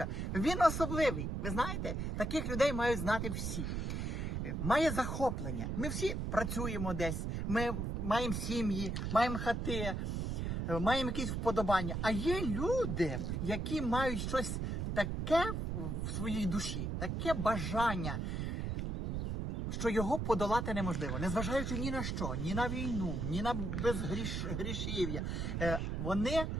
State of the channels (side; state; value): right; noise; rumble, 2 dB below the sound